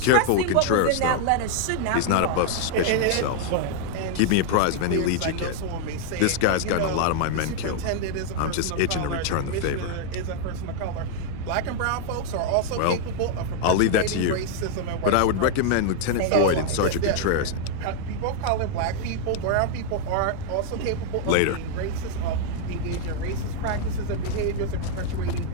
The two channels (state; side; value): different; both; correlation 0.00